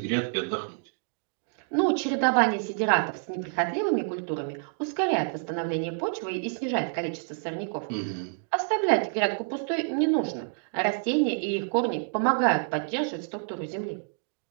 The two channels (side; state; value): left; silent; digital silence